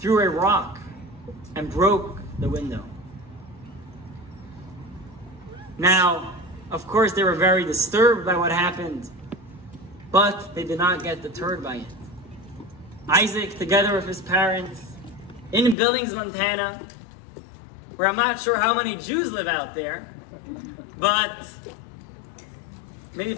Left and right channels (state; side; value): drops out; right; at 15.8 s